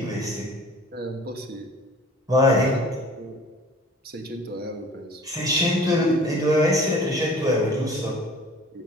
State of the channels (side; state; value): both; normal; correlation 0.47